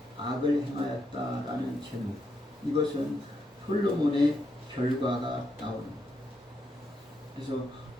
악을 행하였다라는 제목, 이것은 솔로몬의 결과가 나옵니다. 그래서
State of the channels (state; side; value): normal; both; correlation 0.80